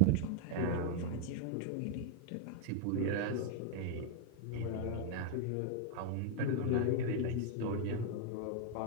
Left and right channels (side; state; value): both; different; correlation 0.00